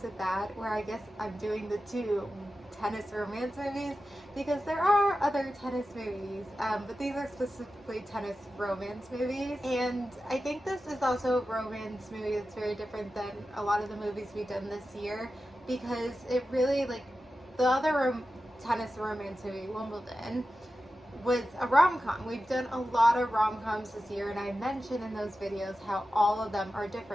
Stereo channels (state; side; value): normal; both; correlation 0.93